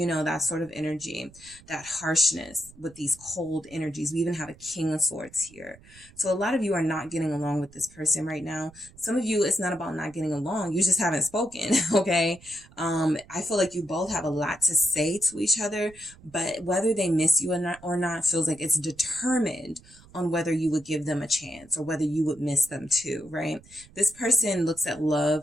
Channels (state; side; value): noise; right; rumble, 24 dB below the sound